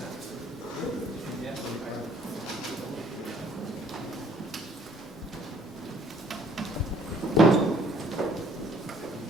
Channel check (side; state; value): both; normal; correlation 0.61